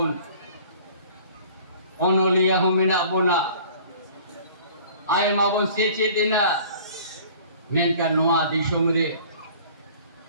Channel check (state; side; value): inverted; both; correlation -0.48